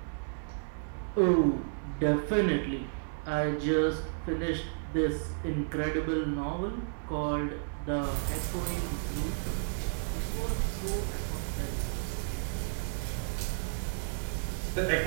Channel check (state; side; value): silent; left; digital silence